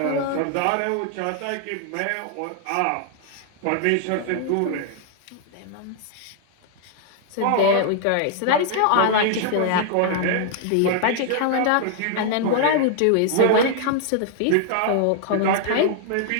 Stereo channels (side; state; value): both; different; correlation 0.00